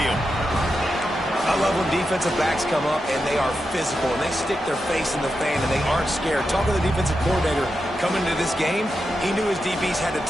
I love when defensive backs come up and they are physical and they stick their face in the fan and they aren't scared. Talking to the defensive coordinator coming into this game, he knew his DBs had to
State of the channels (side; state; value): both; normal; correlation 0.88